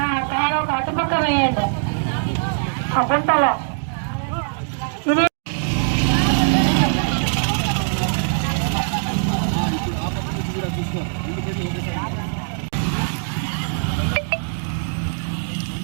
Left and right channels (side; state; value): left; silent; digital silence